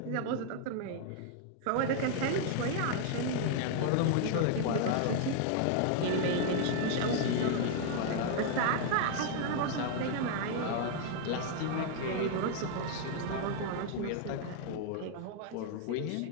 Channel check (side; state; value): both; different; correlation 0.00